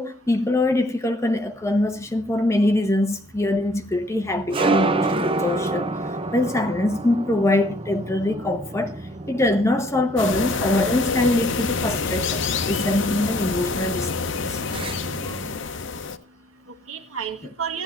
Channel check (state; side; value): normal; both; correlation 0.62